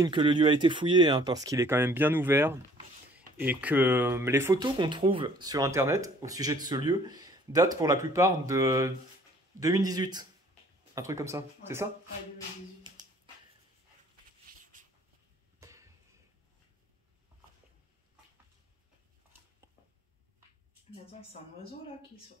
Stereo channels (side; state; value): both; normal; correlation 0.56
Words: que le lieu a été fouillé, hein, parce qu'il est quand même bien ouvert. Et que les photos qu'on trouve sur Internet, au sujet de ce lieu, datent pour la plupart de 2018. Un truc comme ça. Ouais. C'est ça? Ouais, 2018. Mais attends, c'est un oiseau là qui sort.